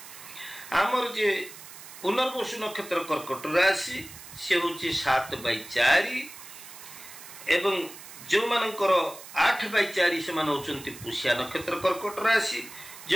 आमर जे पुनर्वसु नक्षत्र कर्कट राशि से होची 7/4 एवं जो मानकर 8/4 से मान होचंती पुष्या नक्षत्र कर्कट राशि,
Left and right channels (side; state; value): right; noise; hiss, 15 dB below the sound